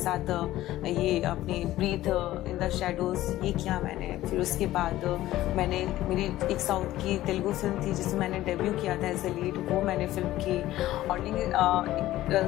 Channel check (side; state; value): right; quieter; 15.1 dB